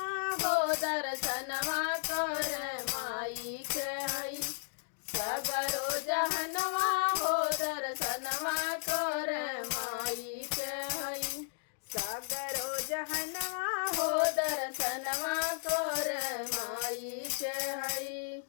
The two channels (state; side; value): silent; right; digital silence